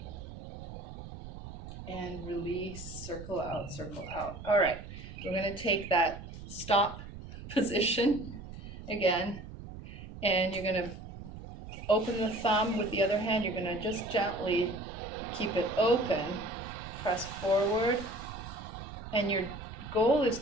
And release, circle out, circle out. All right, we're going to take that stop position again, and you're going to open the thumb with the other hand. You're going to just gently keep it open, press forward, and your goal is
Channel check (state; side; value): noise; right; rumble, 12 dB below the sound